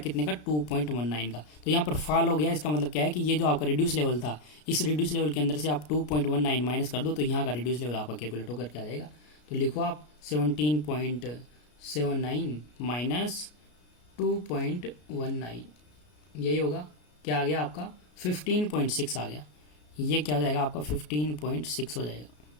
का, 2.19 का। तो यहाँ पर फॉल हो गया, इसका मतलब क्या है कि ये जो आपका रिड्यूस लेवल था, इस रिड्यूस लेवल के अंदर से आप 2.19 माइनस कर दो तो यहाँ का रिड्यूस लेवल आपका कैलकुलेट होकर के आ जाएगा। तो लिखो आप 17.79 माइनस 2.19, यही होगा। क्या आ गया आपका 15.6 आ गया, ये क्या हो जाएगा आपका 15.6 हो जाएगा।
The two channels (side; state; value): right; late; 33 ms